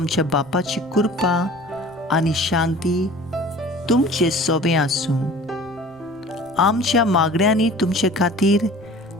बापाची कृपा आनी शांती तुमचे सोबे आसूं. आमच्या मागण्यांनी तुमचे खातीर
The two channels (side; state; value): right; noise; rumble, 28 dB below the sound